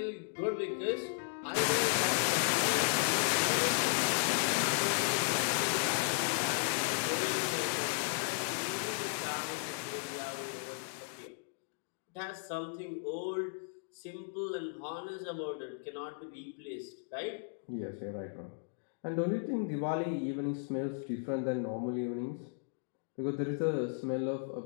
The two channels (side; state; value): right; silent; digital silence